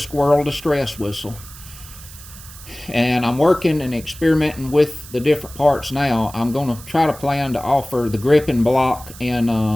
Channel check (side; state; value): right; noise; hiss, 17 dB below the sound